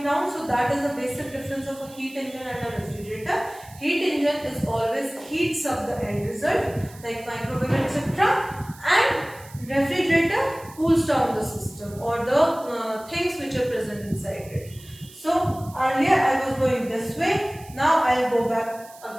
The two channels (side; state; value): right; noise; hiss, 21 dB below the sound